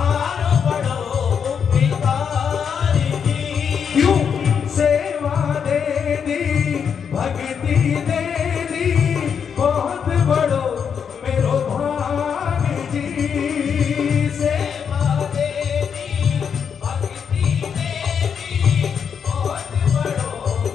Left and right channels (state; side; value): quieter; right; 7.1 dB